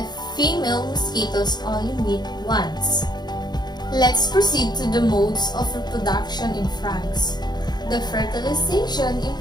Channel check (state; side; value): late; right; 0.20 ms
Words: female mosquitoes only meet once. Let's proceed to the modes of reproduction in frogs. The fertilization in